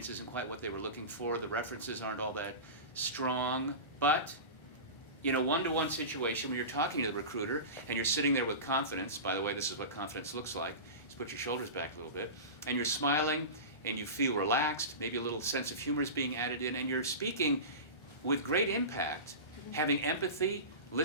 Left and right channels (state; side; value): late; right; 1.4 ms